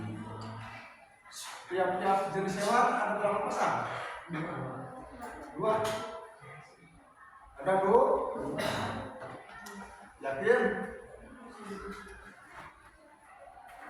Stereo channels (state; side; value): identical; both; correlation 1.00